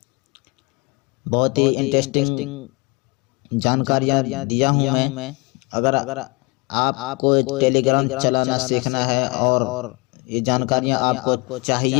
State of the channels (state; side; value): quieter; right; 28.3 dB